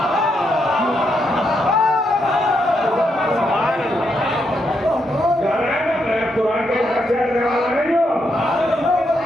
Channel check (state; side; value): normal; both; correlation 0.80